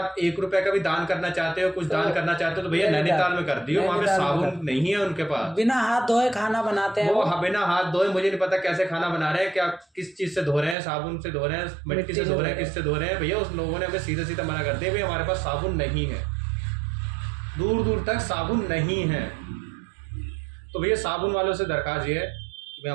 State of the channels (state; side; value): drops out; left; at 10.8 s